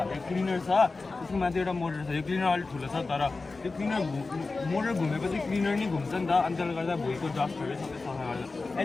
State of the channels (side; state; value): right; quieter; 3.8 dB